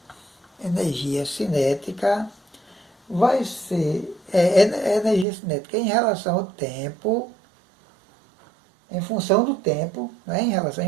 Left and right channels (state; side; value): drops out; left; at 5.2 s